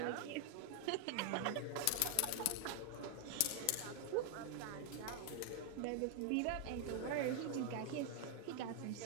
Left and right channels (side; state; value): both; different; correlation 0.00